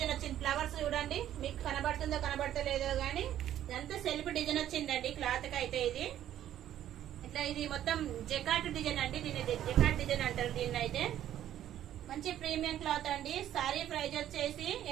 వచ్చింది. ఫ్లవర్స్ చూడండి, మీకు కనబడుతుందో కనబడతలేదో గానీ ఇదంతా సెల్ఫ్ డిజైన్ వచ్చిందండి. క్లాత్ కి అయితే ఇది ఇట్లా ఇది మొత్తం జకాట్ డిజైన్ అండి. దీన్ని జకాట్ డిజైన్ అంటారు. దీన్ని అయితే మంచి ప్రీమియం క్లాత్ అండి. సారీ ప్రైస్ వచ్చేసి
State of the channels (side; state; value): left; quieter; 11.7 dB